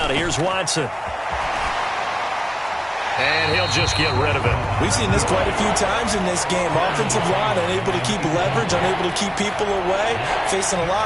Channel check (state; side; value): identical; both; correlation 1.00